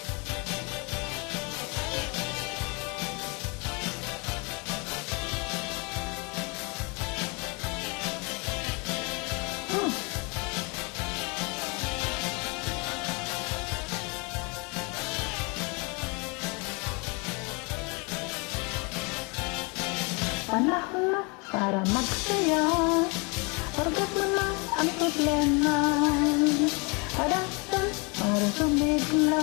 Panahon na para magsaya. Forget mo na ang problema. Hadapan para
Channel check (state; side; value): quieter; right; 31.0 dB